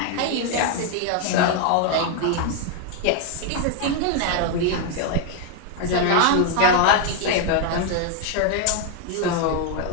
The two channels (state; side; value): different; both; correlation 0.01